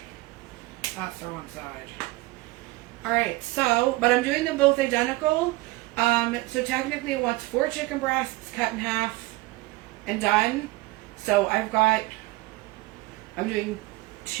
That's the wrong side. Alright, so, but I'm doing them both identical. So technically it wants 4 chicken breasts cut in half and done. So I'm doing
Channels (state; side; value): quieter; left; 21.1 dB